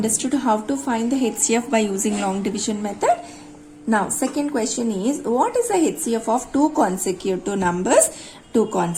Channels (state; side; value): identical; both; correlation 1.00